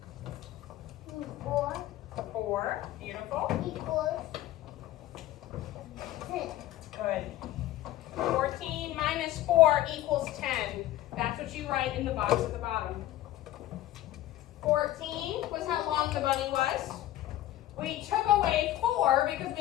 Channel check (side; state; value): right; quieter; 14.3 dB